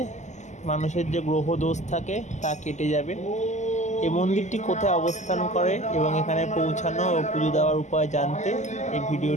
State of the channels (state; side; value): late; right; 0.34 ms